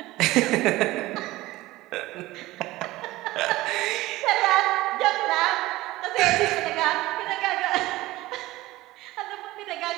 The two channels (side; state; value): left; quieter; 18.1 dB